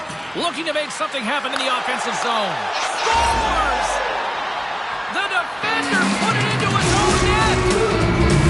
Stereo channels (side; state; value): both; identical; correlation 1.00